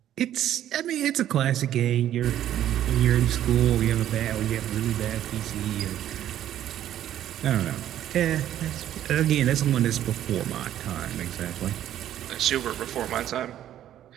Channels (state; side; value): quieter; left; 11.7 dB